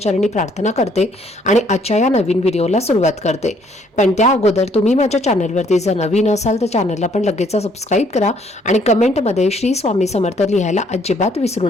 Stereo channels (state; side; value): normal; both; correlation 0.65